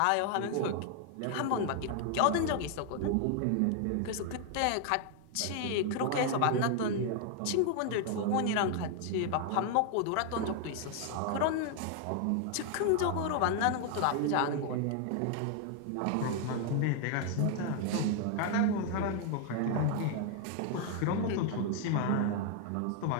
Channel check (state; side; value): different; both; correlation 0.00